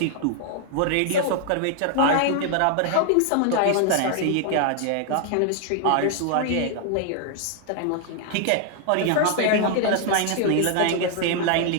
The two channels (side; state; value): both; different; correlation 0.00